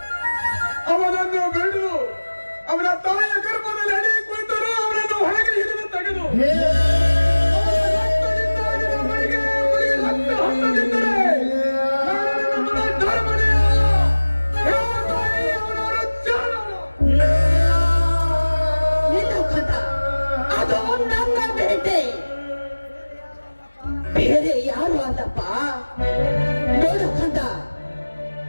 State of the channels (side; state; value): both; inverted; correlation -1.00